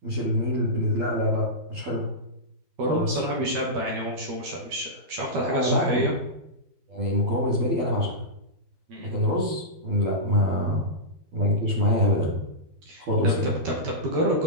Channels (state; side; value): late; left; 12 ms